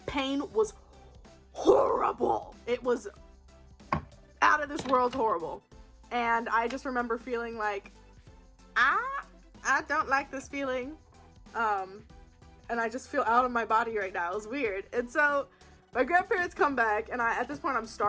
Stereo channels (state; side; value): identical; both; correlation 1.00